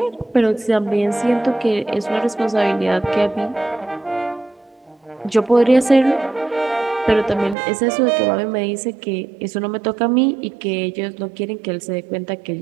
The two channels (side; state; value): left; drops out; at 7.6 s